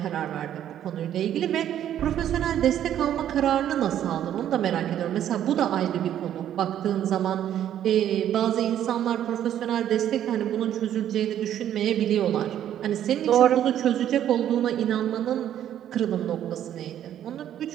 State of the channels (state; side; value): quieter; left; 10.8 dB